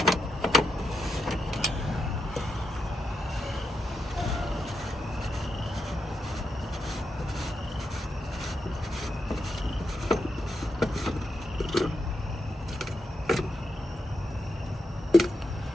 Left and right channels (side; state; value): both; normal; correlation 0.84